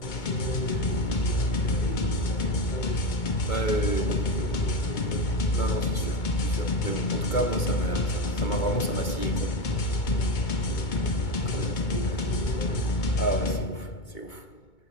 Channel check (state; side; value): late; right; 2.2 ms